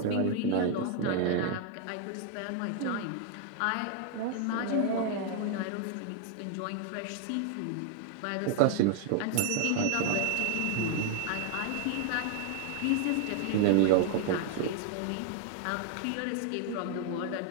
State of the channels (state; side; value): different; both; correlation 0.00